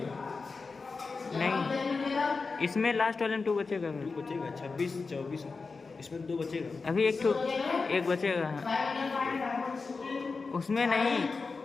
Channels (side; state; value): right; quieter; 4.4 dB